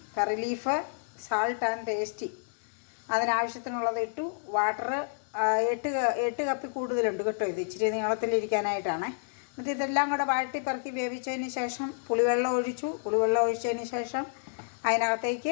curry leaf, salt and tasty അതിനാവശ്യത്തിനുള്ളത് ഇട്ടു. വാട്ടർ 8 കപ്പിൽ കൂടുതലുണ്ട് കേട്ടോ. ഇത് ഇച്ചിരി നീളത്തിലിരിക്കാനായിട്ടാണ്. എന്നിട്ട് ഇതെല്ലാം കൂടെ വാട്ടി പെറുക്കി വേവിച്ചതിന് ശേഷം പുളിവെള്ളം ഒഴിച്ചു. പുളിവെള്ളം ഒഴിച്ചതിന് ശേഷം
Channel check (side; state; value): right; silent; digital silence